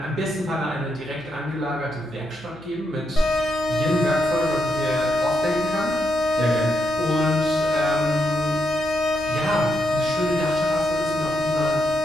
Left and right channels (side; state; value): left; noise; hum, 24 dB below the sound